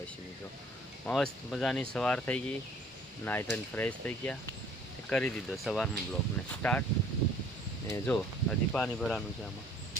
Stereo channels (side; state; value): both; normal; correlation 0.55